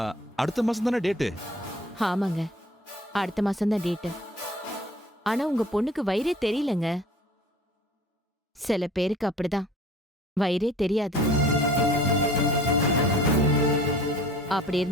அடுத்த மாசம் தானே டேட்டு? ஆமாங்க, அடுத்த மாசம் தான் டேட்டு. ஆனா உங்க பொண்ணுக்கு வயிறே தெரியலங்க. சில பேருக்கு அப்படிதான் வயிறே தெரியாது. அப்படி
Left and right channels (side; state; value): both; normal; correlation 0.48